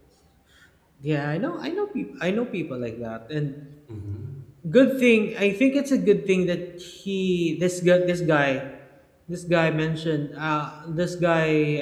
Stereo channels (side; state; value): both; identical; correlation 1.00